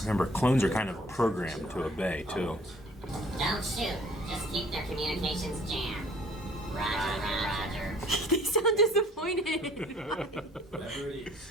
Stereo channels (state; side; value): normal; both; correlation 0.55